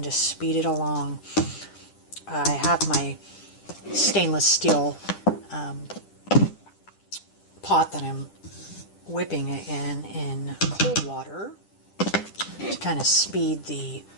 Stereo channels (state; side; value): late; right; 10 ms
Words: to speed it along, I have my stainless steel pot that I'm whipping it in cold water to kind of speed the